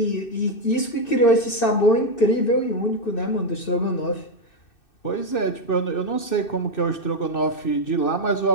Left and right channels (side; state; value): right; late; 2.6 ms